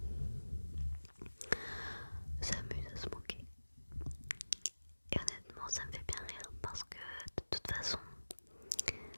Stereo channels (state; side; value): inverted; both; correlation -1.00